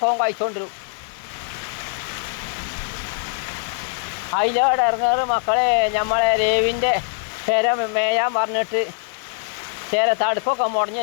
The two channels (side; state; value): right; silent; 64 dB below the other